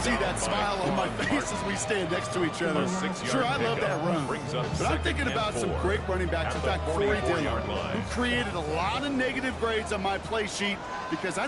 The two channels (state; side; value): identical; both; correlation 1.00